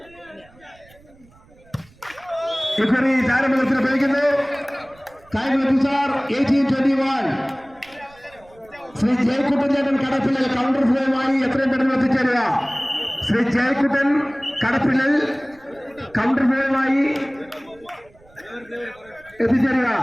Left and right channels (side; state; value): right; noise; rumble, 28 dB below the sound